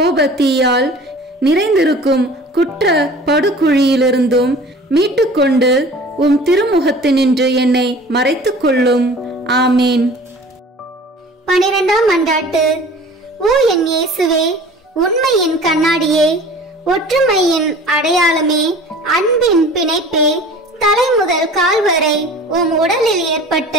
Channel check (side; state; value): both; normal; correlation 0.44